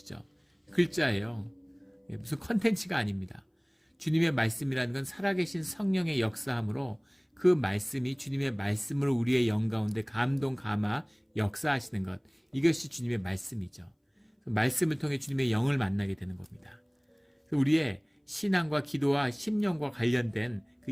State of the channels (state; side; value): identical; both; correlation 1.00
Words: 글자예요. 무슨 컨텐츠가 아닙니다. 주님의 말씀이라는 건 살아계신 성령의 역사함으로 그 말씀이 주님의 말씀으로 우리의 영 가운데 감동, 감화, 역사하시는 것. 이것이 주님의 말씀이죠. 말씀을 통해 주님의 영을 만나게 되는 겁니다. 우리의 신앙과 기도와 심령과 관련된 그